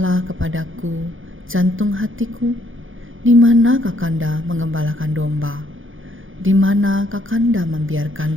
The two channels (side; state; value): left; late; 0.58 ms